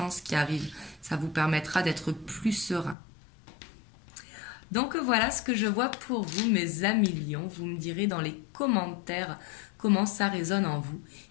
qui arrive. Ça vous permettra d'être plus serein. Donc voilà ce que je vois pour vous, mes amis lions. Vous me direz dans les commentaires comment ça résonne en vous.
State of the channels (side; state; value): right; drops out; at 3.0 s